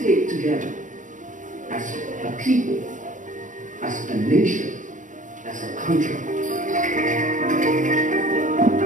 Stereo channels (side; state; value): left; late; 0.37 ms